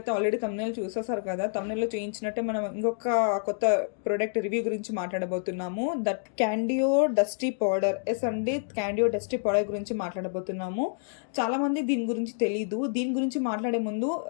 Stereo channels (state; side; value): silent; right; digital silence